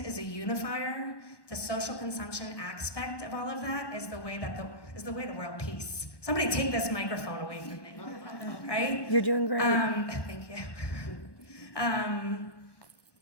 is a unifier. The social consumption aspect of all of that is the way to world peace. Somebody take this microphone away from me, right? You're doing great. Thank you.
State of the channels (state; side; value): late; right; 1.2 ms